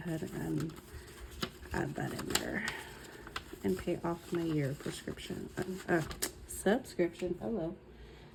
and add that in there and pay off my year prescription, subscription. Hello,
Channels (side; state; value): both; identical; correlation 1.00